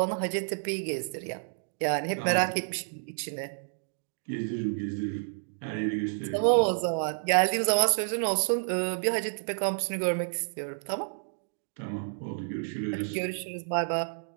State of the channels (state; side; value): silent; left; digital silence